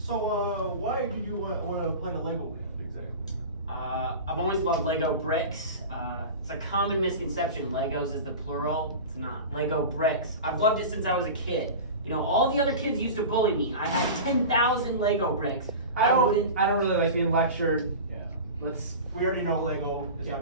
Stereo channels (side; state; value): both; inverted; correlation -0.31